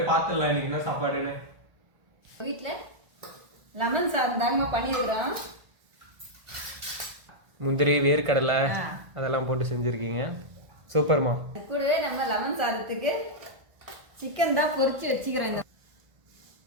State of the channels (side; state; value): left; late; 1.5 ms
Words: பார்த்துடலாம் இன்னைக்கு என்ன சாப்பாடுன்னு. வீட்டில் லெமன் சாதம் தாங்கம்மா பண்ணியிருக்கிறோம். முந்திரி, வேர்க்கடலை அதெல்லாம் போட்டு செஞ்சுருக்கீங்க. சூப்பர்மா. கூடவே நம்ம லெமன் சாதத்துக்கு சிக்கன் தான் பொரிச்சு வச்சுக்கிறோம்.